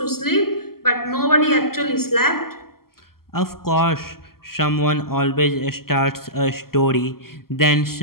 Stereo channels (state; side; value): late; right; 0.93 ms